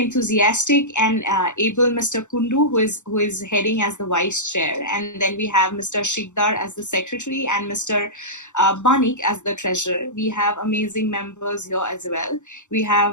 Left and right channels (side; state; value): right; late; 0.84 ms